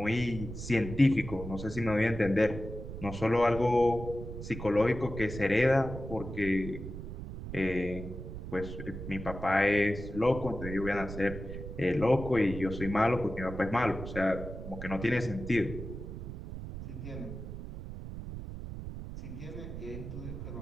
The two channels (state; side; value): noise; right; rumble, 9 dB below the sound